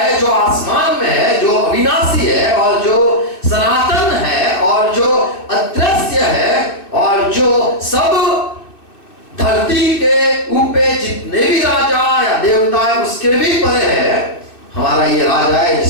जो आसमान में है, जो अविनाशी है और जो सनातन है और जो अदृश्य है और जो सब धरती के ऊपर जितने भी राजा या देवता है उसके भी परे है। हमारा ये राजा है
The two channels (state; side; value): late; right; 2.5 ms